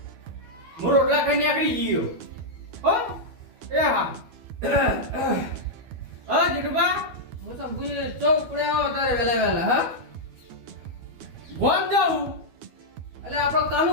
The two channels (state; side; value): late; left; 12 ms